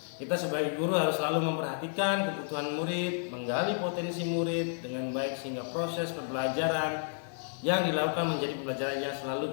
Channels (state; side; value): silent; right; digital silence